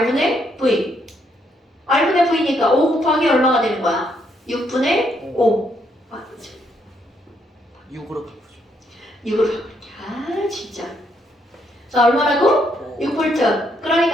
V. R분의 V니까 5 곱하기 얼마가 되는 거야? 6분의 5. 아, 6으로 바꾸죠. 6으로 바꿀게. 진짜. 자 얼마라고? 6V.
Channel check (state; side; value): normal; both; correlation 0.74